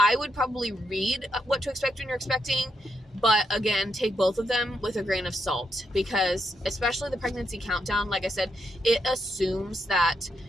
read What to Expect When You're Expecting, but again, take both of them with a grain of salt, because especially the pregnancy countdown, like I said, it assumes that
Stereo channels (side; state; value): both; normal; correlation 0.80